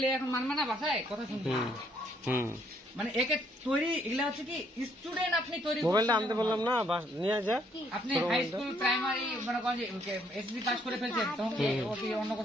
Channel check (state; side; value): normal; both; correlation 0.69